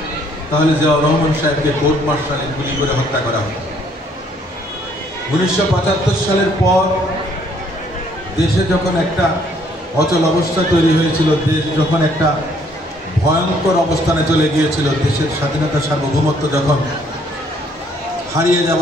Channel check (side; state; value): both; normal; correlation 0.65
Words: তাহলে জিয়াউর রহমান সাহেবকে কোর্ট মার্শালে গুলি করে হত্যা করা হতো। 1975 সালের পর দেশে যখন একটা অচল অবস্থা তৈরি হয়েছিল, দেশ যখন একটা ভয়ঙ্কর অবস্থানে চলে গিয়েছিল, দেশের স্বাধীনতা সার্বভৌমত্ব যখন হারিয়ে